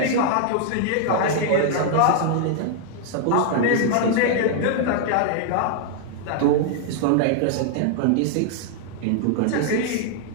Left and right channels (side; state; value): both; different; correlation 0.00